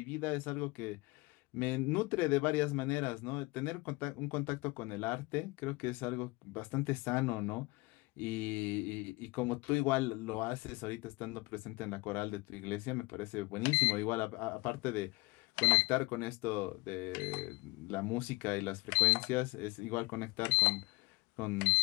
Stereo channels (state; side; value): quieter; right; 24.3 dB